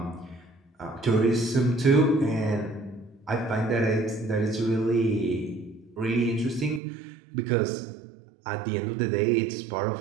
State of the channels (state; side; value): drops out; left; at 6.8 s